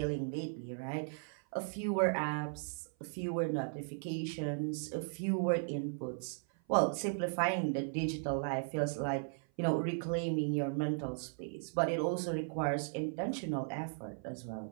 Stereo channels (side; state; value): left; silent; 53 dB below the other